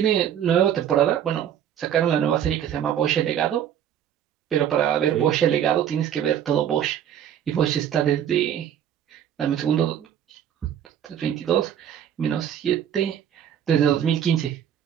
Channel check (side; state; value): left; quieter; 9.8 dB